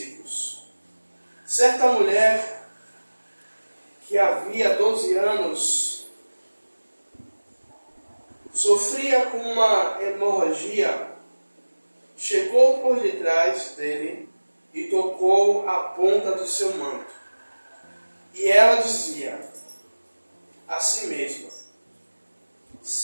Certa mulher que havia 12 anos sofria com uma hemorragia, chegou por detrás dele e tocou a ponta do seu manto. E ela dizia a si mesma:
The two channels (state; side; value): inverted; both; correlation -1.00